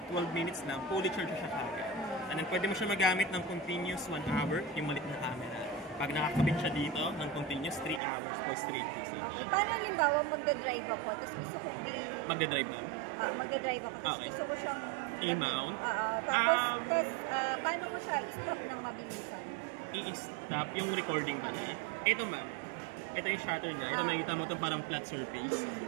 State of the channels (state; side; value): drops out; left; at 8.0 s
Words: 12 minutes lang, fully charge siya kagad. And then pwede mo siya magamit ng continuous 1 hour, yung malit na camera. Pag nakakabit siya dito ng continuous 3 hours for straight usage. Okay, paano halimbawa magdadrive ako, tapos gusto ko Magdadrive na? magdadrive ako, tapos Okay. gusto ko siyang I-mount? tapos paano ko siya i-stop ng mabilisan? I-stop yung recording ba niya. Ito ma'am, ito yung shutter niya. Ito makikita mo itong parang flat surface.